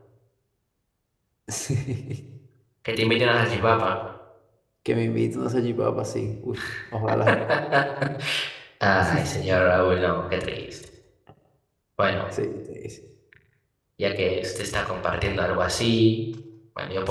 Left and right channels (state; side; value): identical; both; correlation 1.00